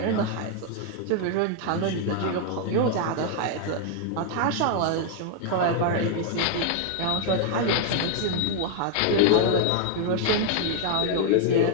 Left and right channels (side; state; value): both; different; correlation 0.00